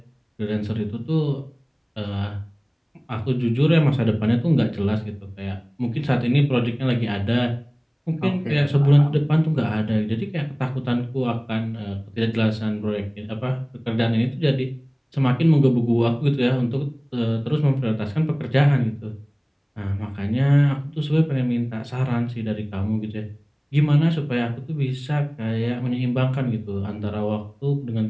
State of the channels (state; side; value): identical; both; correlation 1.00